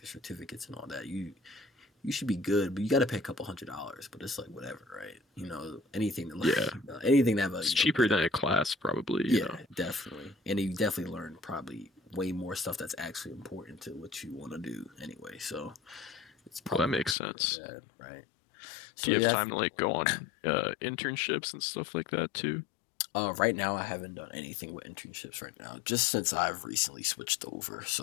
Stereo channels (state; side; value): drops out; right; at 17.2 s